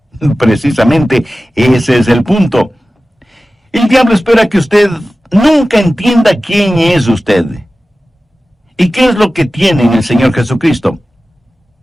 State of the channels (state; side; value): normal; both; correlation 0.95